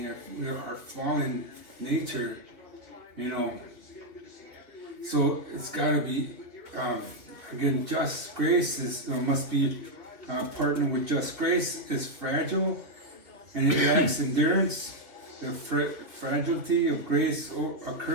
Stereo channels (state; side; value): late; left; 2.6 ms